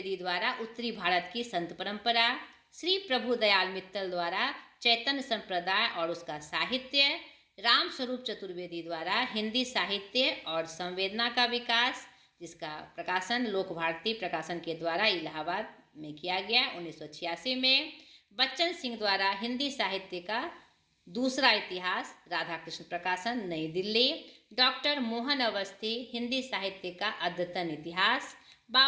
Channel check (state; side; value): identical; both; correlation 1.00